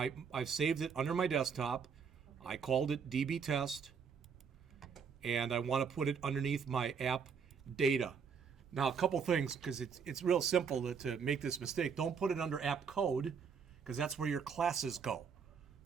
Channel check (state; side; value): quieter; left; 6.3 dB